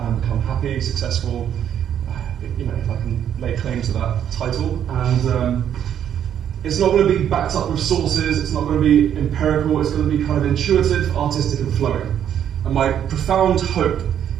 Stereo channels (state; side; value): quieter; left; 9.6 dB